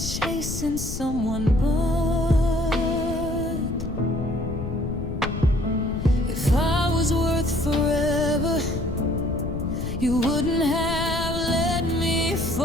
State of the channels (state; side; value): noise; left; rumble, 6 dB below the sound